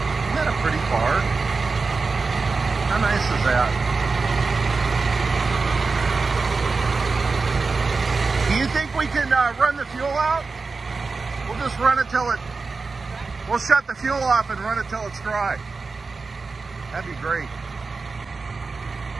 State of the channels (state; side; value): quieter; left; 4.2 dB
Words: that a pretty car? How nice is that? Do you think we can run the fuel out? We'll just run it till we'll shut the fuel off and run it till it's dry. That'd be great.